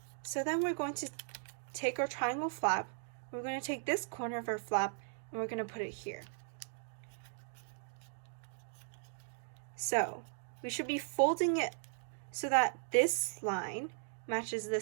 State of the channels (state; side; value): silent; left; digital silence